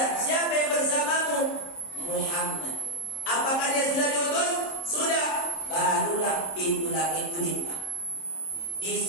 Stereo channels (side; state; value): right; late; 26 ms